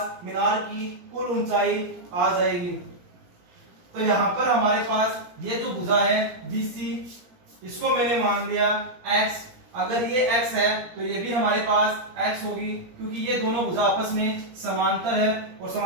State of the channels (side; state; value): left; late; 17 ms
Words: मीनार की कुल ऊंचाई आ जाएगी। तो यहाँ पर हमारे पास ये जो भुजा है BC, इसको मैंने मान लिया x। अगर ये x है तो ये भी हमारे पास x होगी, क्योंकि ये दोनों भुजा आपस में समांतर है और